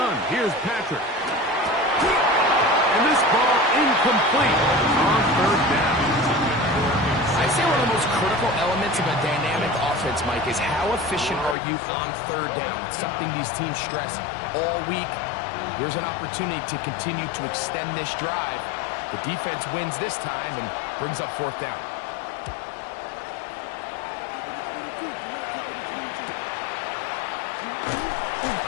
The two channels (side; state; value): right; drops out; at 11.6 s